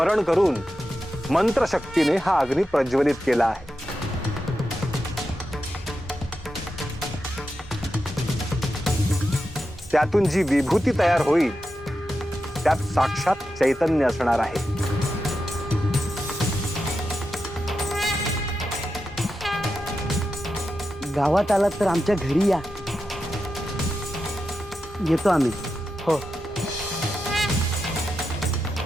करून मंत्रशक्तीने हा अग्नी प्रज्वलित केला आहे. त्यातून जी विभूती तयार होईल त्यात साक्षात चैतन्य असणार आहे. गावात आलात तर आमच्या घरी या. येतो आम्ही. हो.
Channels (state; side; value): normal; both; correlation 0.89